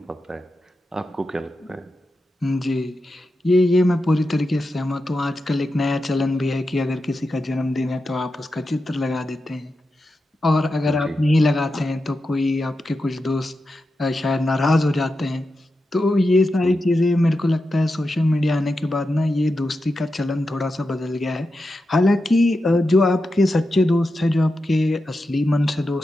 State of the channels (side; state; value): both; normal; correlation 0.89